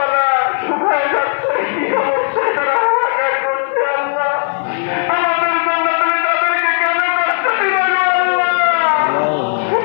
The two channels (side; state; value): right; silent; 60 dB below the other